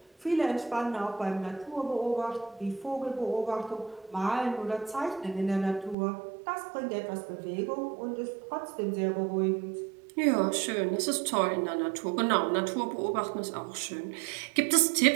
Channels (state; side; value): drops out; left; at 6.0 s